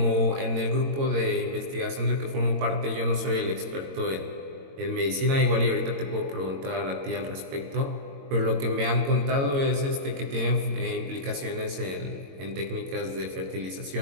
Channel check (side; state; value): left; late; 22 ms